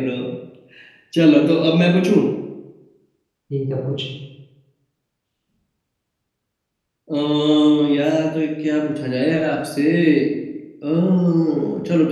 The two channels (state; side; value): identical; both; correlation 1.00